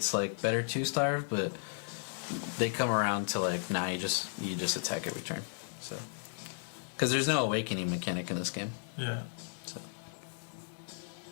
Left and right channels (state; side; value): silent; right; digital silence